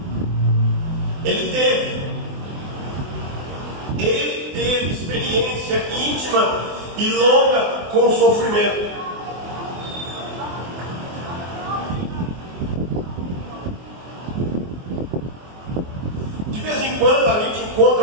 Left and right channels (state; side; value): late; left; 24 ms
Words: Ele teve experiência íntima e longa com o sofrimento. De vez em quando a gente